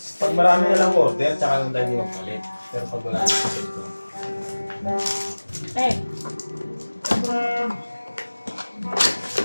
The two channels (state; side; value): inverted; both; correlation -1.00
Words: Pag marami na lang order, tsaka lang tayo magpalit. Pero pag wala na ito. Eh.